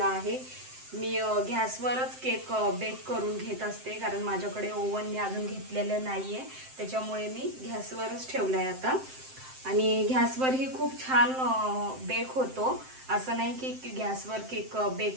आहे. मी गॅसवरच केक बेक करून घेत असते, कारण माझ्याकडे ओव्हन मी अजून घेतलेलं नाही आहे. त्याच्यामुळे मी गॅसवरच ठेवलं आहे आता. आणि गॅसवरही खूप छान बेक होतो. असं नाही की गॅसवर केक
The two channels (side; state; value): left; late; 7.7 ms